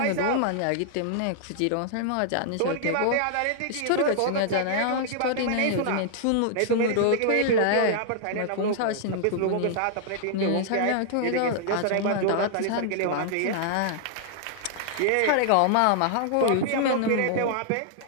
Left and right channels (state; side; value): different; both; correlation -0.01